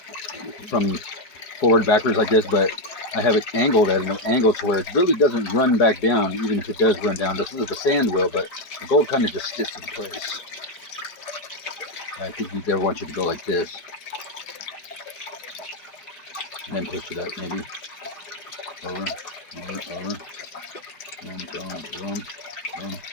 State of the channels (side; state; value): right; late; 4.8 ms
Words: from forward backwards like this, but I have it angled at an angle to where it really doesn't run back down, even if it does run down. The sand will, but the gold kind of just sits in place. I think we never want you to go like this. And then push it up, maybe. Over. Boom.